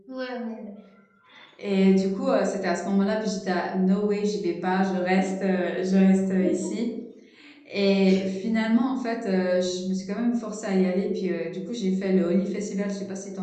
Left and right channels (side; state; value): both; identical; correlation 1.00